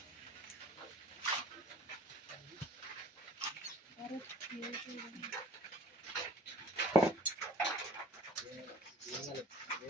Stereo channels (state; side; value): normal; both; correlation 0.49